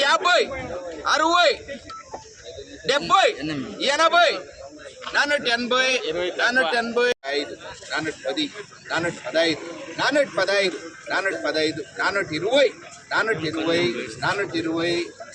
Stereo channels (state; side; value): identical; both; correlation 1.00